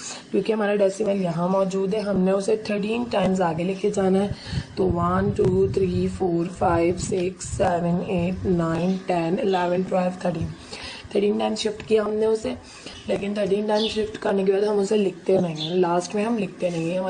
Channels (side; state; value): both; identical; correlation 1.00